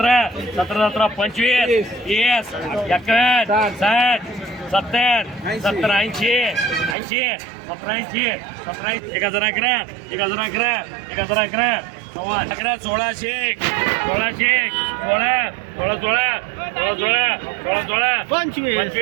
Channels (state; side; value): drops out; left; at 7.0 s